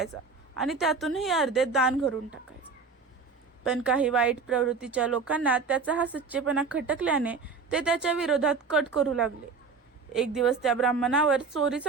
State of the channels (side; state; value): left; quieter; 4.8 dB